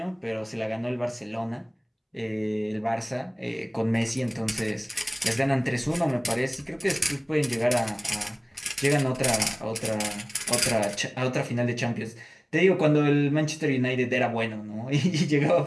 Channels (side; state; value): both; identical; correlation 1.00